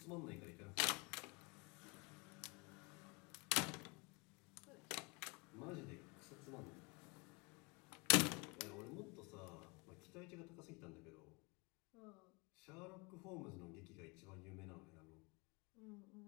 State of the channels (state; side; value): quieter; right; 30.3 dB